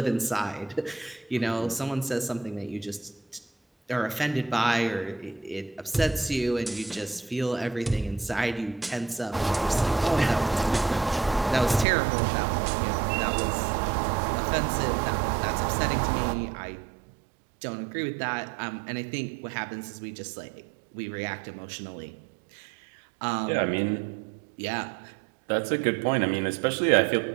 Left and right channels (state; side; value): drops out; left; at 11.9 s